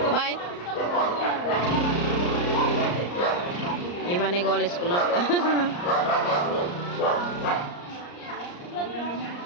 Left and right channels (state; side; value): late; right; 34 ms